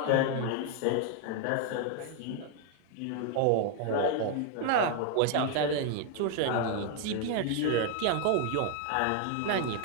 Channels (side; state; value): both; different; correlation 0.00